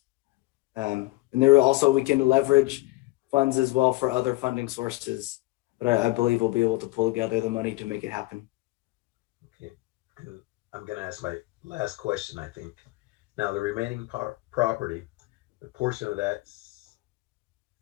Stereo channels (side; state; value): right; quieter; 21.4 dB